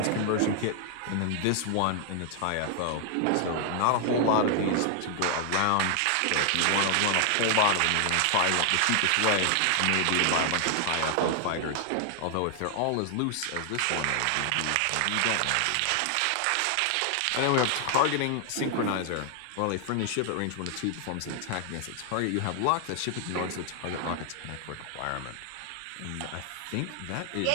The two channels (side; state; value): both; different; correlation 0.00